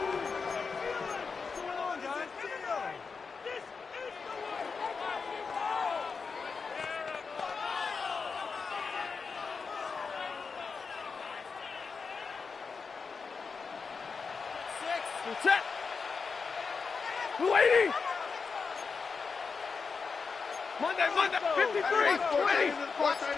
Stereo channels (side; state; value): right; quieter; 5.1 dB